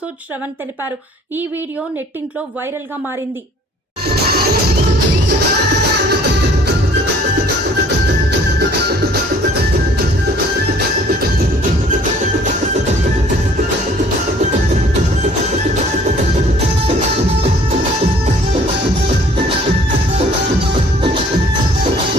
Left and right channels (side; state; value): both; normal; correlation 0.55